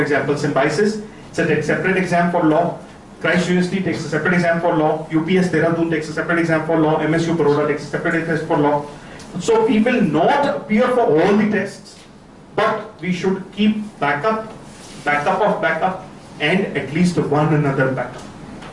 example, Symbiosis, it's a separate exam for law. Christ University takes a separate exam for law. UPS Dehradun takes a separate exam for law. MSU Baroda takes a separate test for law. So we will not appear for all the tests, but we should keep backup of backup, and at least one another backup.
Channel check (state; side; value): identical; both; correlation 1.00